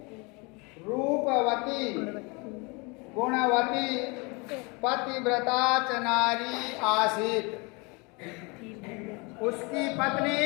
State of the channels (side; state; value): right; quieter; 28.9 dB